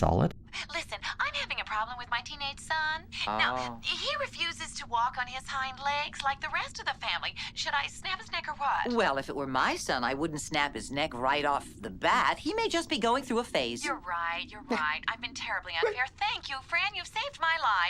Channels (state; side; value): identical; both; correlation 1.00